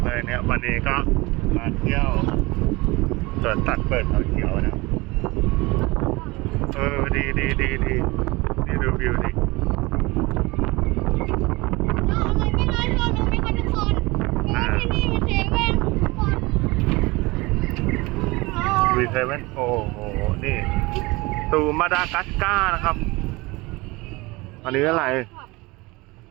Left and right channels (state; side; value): quieter; left; 23.1 dB